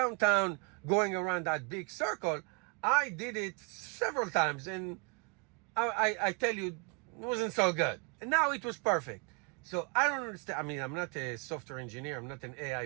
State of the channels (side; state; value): left; quieter; 34.0 dB